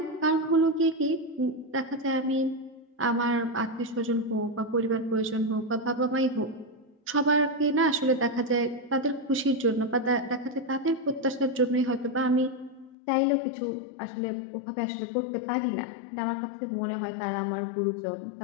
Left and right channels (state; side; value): drops out; right; at 13.0 s